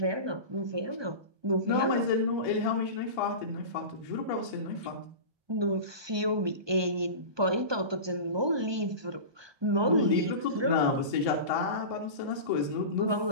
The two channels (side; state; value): left; late; 1.2 ms